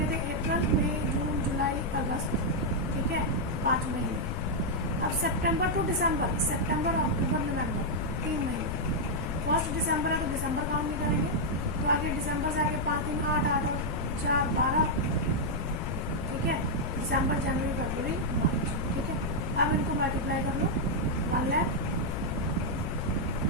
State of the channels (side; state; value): left; noise; rumble, 2 dB below the sound